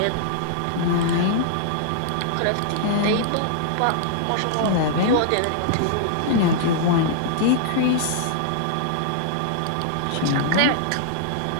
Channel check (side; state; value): both; different; correlation -0.01